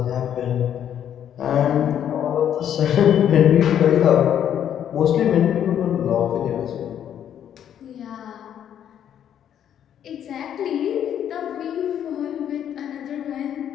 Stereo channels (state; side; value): quieter; right; 9.7 dB